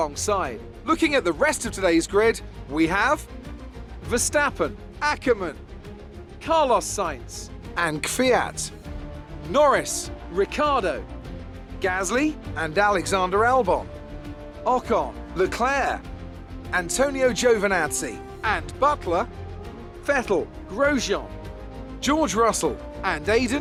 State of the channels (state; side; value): identical; both; correlation 1.00